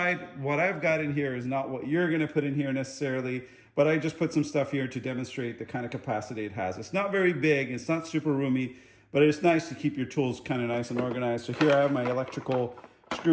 what I've got in here is not what you're gonna put in here necessarily, but I just put some stuff here to demonstrate the kind of capacity it has. It's not very big, it's not super roomy, but it's nice to keep your tools kind of nice and organized. So here I have my electrical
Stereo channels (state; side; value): identical; both; correlation 1.00